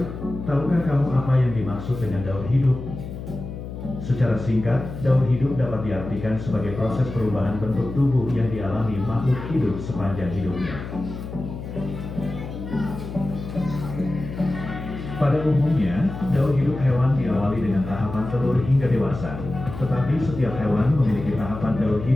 tahukah kamu apa yang dimaksud dengan daur hidup? Secara singkat, daur hidup dapat diartikan sebagai proses perubahan bentuk tubuh yang dialami makhluk hidup sepanjang hidupnya. Pada umumnya, daur hidup hewan diawali dengan tahapan telur hingga dewasa, tetapi setiap hewan memiliki tahapan daur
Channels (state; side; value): noise; left; hum, 9 dB below the sound